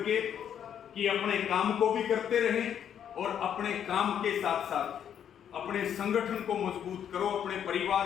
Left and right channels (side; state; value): right; quieter; 9.1 dB